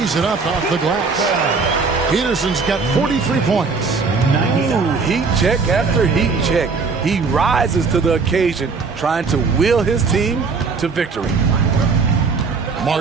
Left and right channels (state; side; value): quieter; left; 4.7 dB